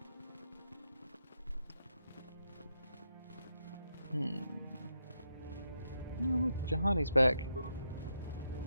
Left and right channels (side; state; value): both; inverted; correlation -0.82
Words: Oh, look, Juhani's back.